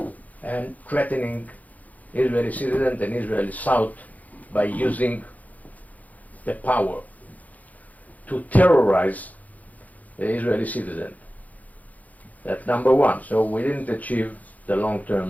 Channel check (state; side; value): late; right; 0.077 ms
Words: and threatening Israeli citizens and Israeli South by using the power to terrorize the Israeli citizen. That's number one. So we didn't achieve the